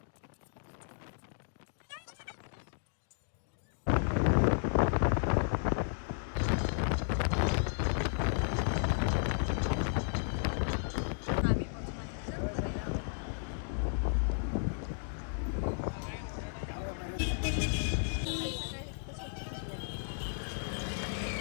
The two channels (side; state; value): right; silent; digital silence